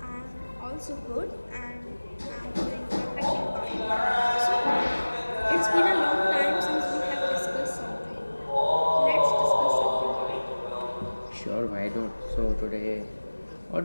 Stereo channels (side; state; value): both; inverted; correlation -1.00